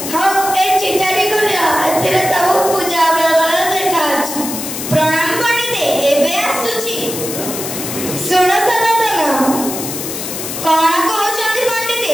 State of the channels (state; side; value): noise; left; hiss, 6 dB below the sound